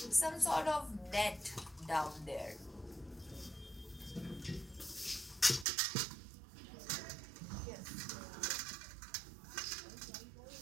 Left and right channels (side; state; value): left; drops out; at 5.7 s